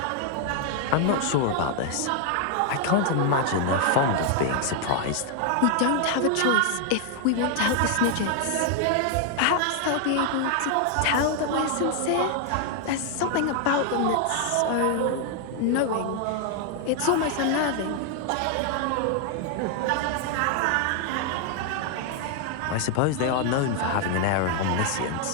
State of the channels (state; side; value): different; both; correlation 0.00